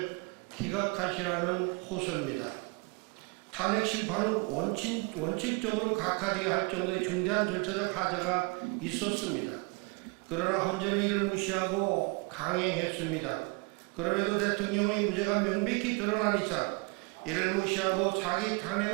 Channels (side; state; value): left; quieter; 31.3 dB